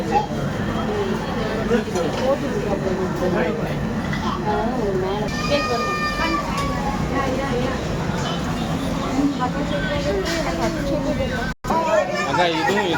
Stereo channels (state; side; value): identical; both; correlation 1.00